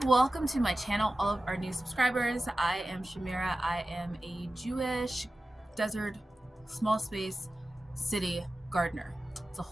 welcome to my channel, all of our new subscribers. I am Shamira. I am a Jewish desert small space city gardener. It's a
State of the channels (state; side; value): normal; both; correlation 0.94